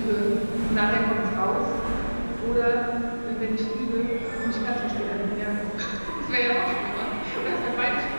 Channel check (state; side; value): inverted; both; correlation -1.00